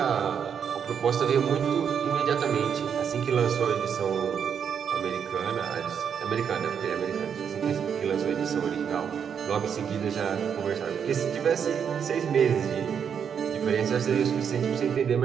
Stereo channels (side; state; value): left; quieter; 7.5 dB